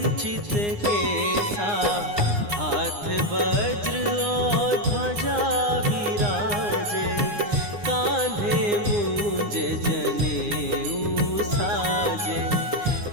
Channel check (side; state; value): left; late; 9.7 ms